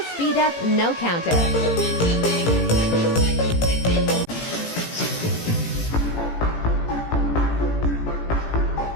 Speed Up No Counter.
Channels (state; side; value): late; right; 18 ms